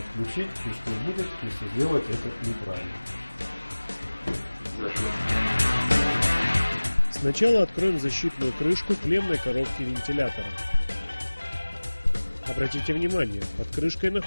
и что будет, если сделать это неправильно. Сначала откроем защитную крышку клеммной коробки вентилятора. Обратите внимание, под крышкой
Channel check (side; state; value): both; inverted; correlation -1.00